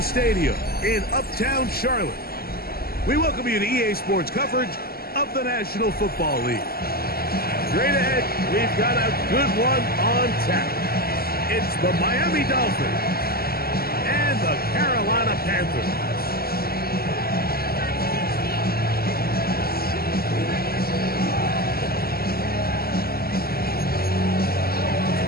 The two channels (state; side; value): late; right; 0.45 ms